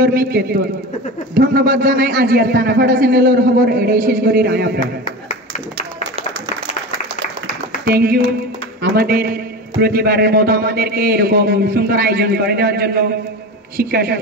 কেতন ধন্যবাদ জানাই। আজিয়ার তেনাফাড়া চ্যানেলের খবর এটাই শেষ করি রায়াপ্রা। থ্যাংক ইউ আমাদের প্রতিবারের মতো আমাদেরকে এরকম সুন্দর আয়োজন করে দেওয়ার জন্য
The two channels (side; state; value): both; normal; correlation 0.28